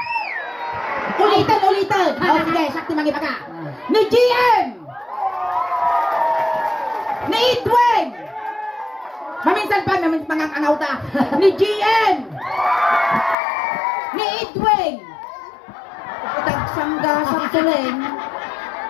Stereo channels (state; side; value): drops out; right; at 13.4 s